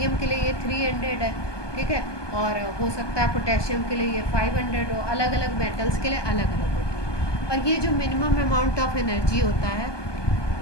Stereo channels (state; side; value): late; right; 1.2 ms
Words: के लिए ये 300 है, ठीक है, और हो सकता है पोटेशियम के लिए ये 500 हो, अलग अलग मेटल्स के लिए अलग अलग होती है। और ये जो मिनिमम अमाउंट ऑफ एनर्जी होता है